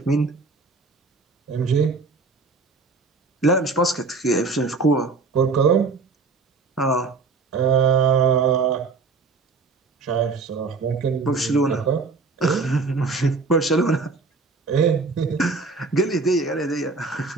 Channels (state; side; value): quieter; left; 4.1 dB